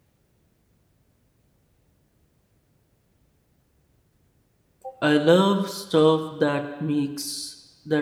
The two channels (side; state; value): both; identical; correlation 1.00